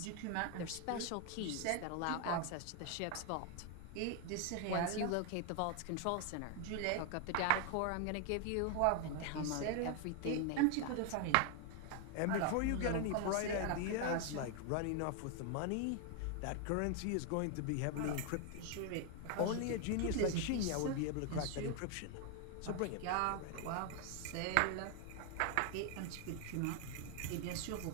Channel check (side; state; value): both; different; correlation 0.00